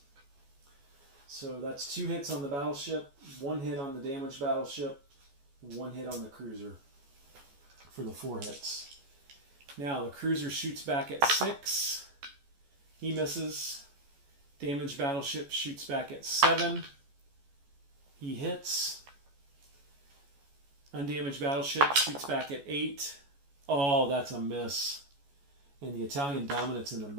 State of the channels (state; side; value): late; left; 14 ms